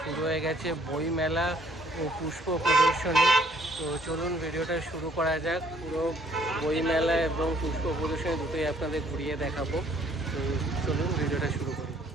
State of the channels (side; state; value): both; normal; correlation 0.63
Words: শুরু হয়ে গেছে বই মেলা ও পুষ্প প্রদর্শনী। তো চলুন ভিডিওটা শুরু করা যাক। পুরো বই মেলা এবং পুষ্প প্রদর্শনী দুটোই আপনাদের ঘুরিয়ে দেখাবো। তো চলুন ভিডিওটা শুরু করি।